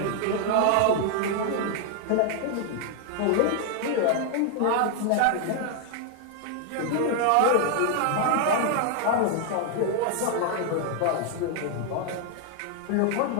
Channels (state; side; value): different; both; correlation 0.00